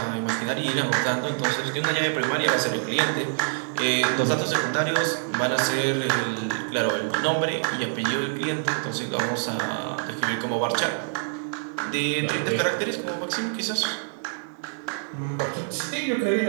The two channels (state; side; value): silent; left; 61 dB below the other